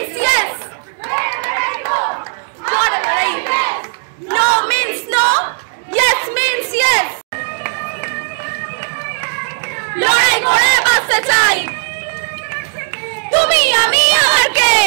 yes. No means no. Yes means yes. লড়াই করে বাঁচতে চাই। তুমি আমি আবার কে?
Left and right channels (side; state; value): left; silent; digital silence